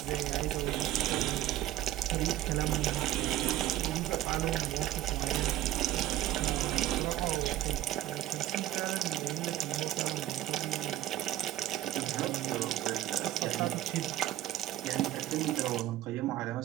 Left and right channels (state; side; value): quieter; left; 13.8 dB